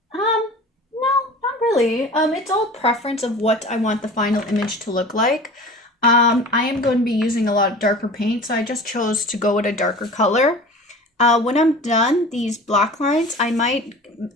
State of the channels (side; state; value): both; normal; correlation 0.39